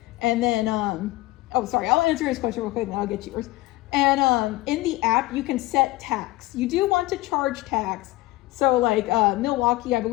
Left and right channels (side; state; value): right; quieter; 18.9 dB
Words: And then, oh, sorry, I'll answer his question real quick and then I'll get yours. And in the app, you can set tax. You do want to charge tax. So like Milwaukee, I